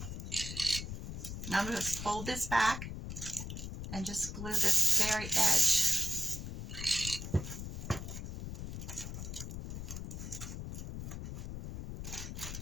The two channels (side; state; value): left; noise; rumble, 6 dB below the sound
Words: Now I'm going to fold this back and just glue this very edge.